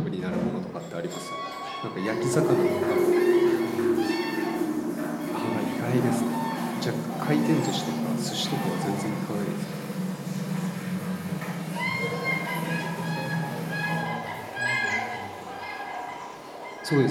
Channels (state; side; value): identical; both; correlation 1.00